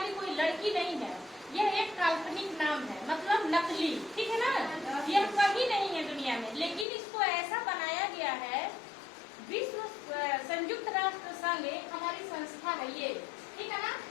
कोई लड़की नहीं है। यह एक काल्पनिक नाम है, मतलब नकली, ठीक है ना। यह कहीं नहीं है दुनिया में, लेकिन इसको ऐसा बनाया गया है। विश्व संयुक्त राष्ट्र संघ एक हमारी संस्था है ये, ठीक है ना।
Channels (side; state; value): right; drops out; at 6.9 s